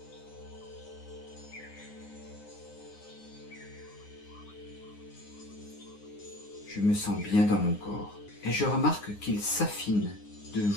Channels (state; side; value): late; right; 9.7 ms